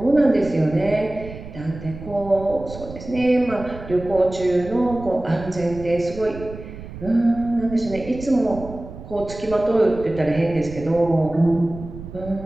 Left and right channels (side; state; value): right; noise; rumble, 13 dB below the sound